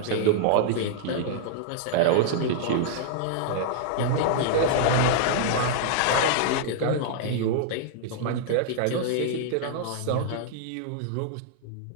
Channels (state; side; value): different; both; correlation -0.01